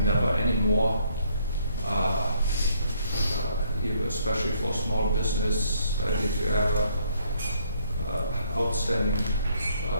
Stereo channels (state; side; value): inverted; both; correlation -0.67